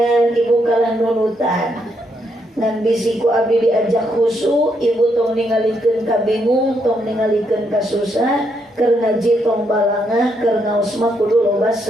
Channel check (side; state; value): both; normal; correlation 0.77